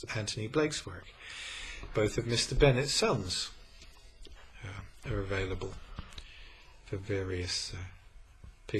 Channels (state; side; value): identical; both; correlation 1.00